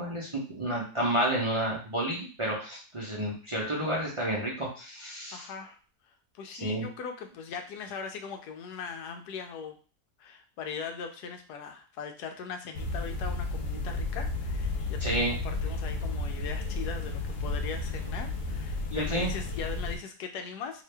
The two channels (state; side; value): normal; both; correlation 0.06